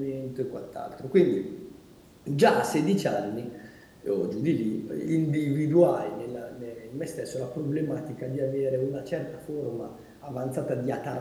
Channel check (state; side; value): identical; both; correlation 1.00